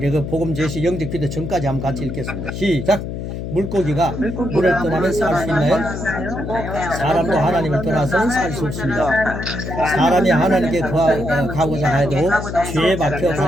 그 복음 제시 영접 기도 전까지 한번 같이 읽겠습니다. 시작. 물고기가 물을 떠나면 살 수 있나요? 사람도 하나님을 떠나서는 살 수 없습니다. 사람이 하나님께 가고자 해도 죄에 박혀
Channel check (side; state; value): left; noise; hum, 6 dB below the sound